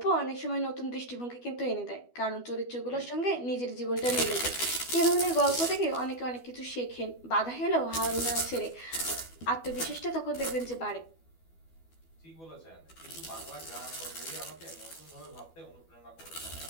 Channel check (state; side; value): late; right; 12 ms